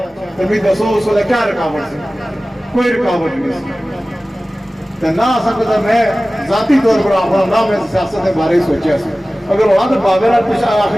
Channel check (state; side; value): normal; both; correlation 0.97